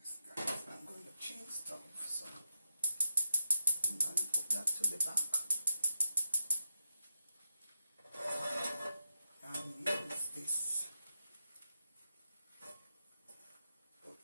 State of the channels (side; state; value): both; inverted; correlation -0.85